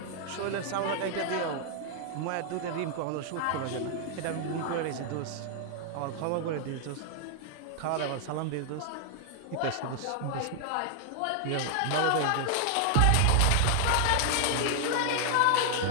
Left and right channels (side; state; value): both; different; correlation 0.00